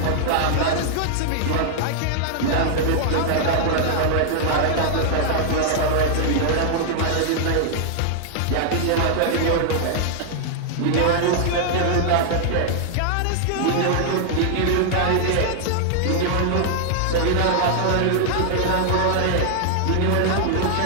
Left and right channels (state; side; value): different; both; correlation -0.01